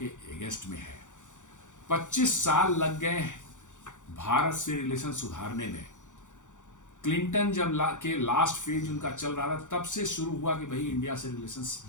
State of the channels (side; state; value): right; late; 0.86 ms